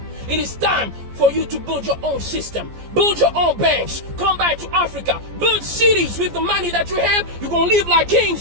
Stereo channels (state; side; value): late; left; 14 ms